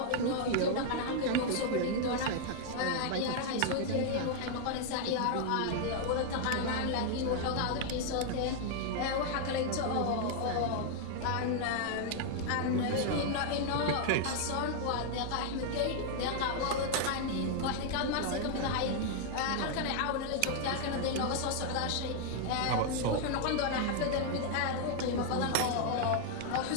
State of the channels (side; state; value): both; different; correlation 0.00